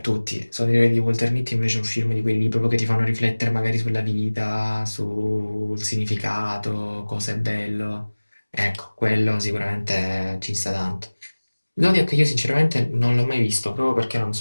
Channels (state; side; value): inverted; both; correlation -1.00